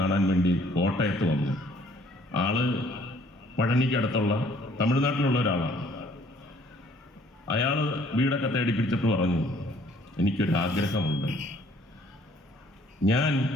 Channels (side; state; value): both; normal; correlation 0.60